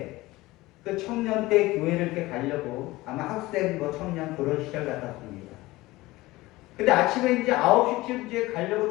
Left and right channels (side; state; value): right; quieter; 19.3 dB